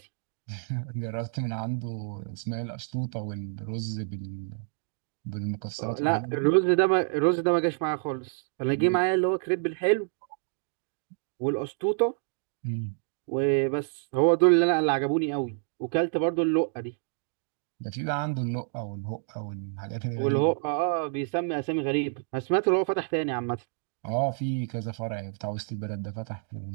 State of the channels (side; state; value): left; silent; 59 dB below the other